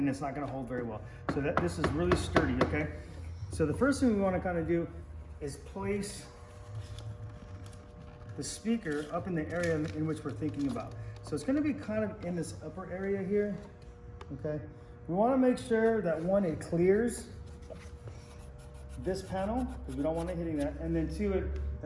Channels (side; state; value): both; identical; correlation 1.00